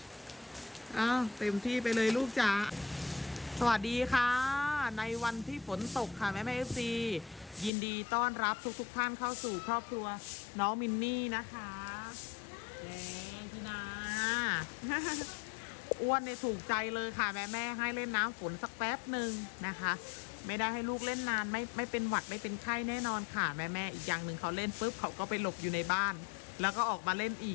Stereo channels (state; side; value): drops out; right; at 7.7 s